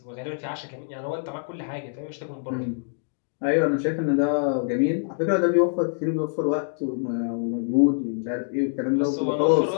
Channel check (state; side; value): silent; right; digital silence